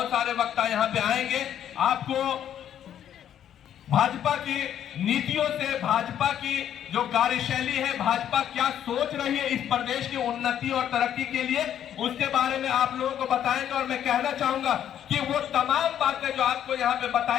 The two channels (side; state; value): right; quieter; 10.2 dB